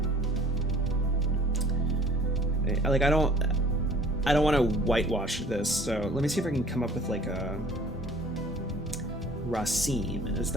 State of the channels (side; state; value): both; normal; correlation 0.50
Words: like I don't want to whitewash this. So let me see if I can come up with like a Rasim. Is